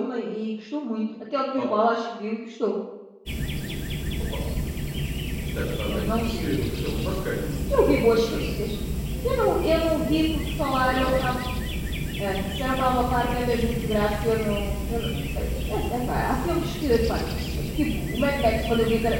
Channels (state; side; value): identical; both; correlation 1.00